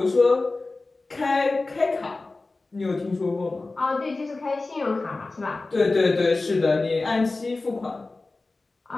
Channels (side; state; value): right; quieter; 3.4 dB